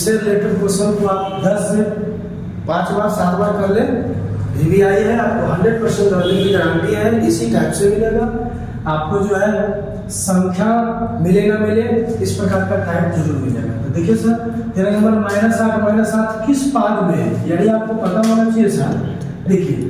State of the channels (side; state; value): both; identical; correlation 1.00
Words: रिलेटेड क्वेश्चन को आप 10 से 5 बार 7 बार कर ले। VVI है, आपको 100% लर्निंग की गारंटी है। इसी टाइप से मिलेगा आपको, जो है संख्या मिले ना मिले इस प्रकार का टाइप जरूर मिलेगा। तो देखिए सर, 13 नंबर -8 किस पाद में है, यानी आपको पता होना चाहिए सर। देखिए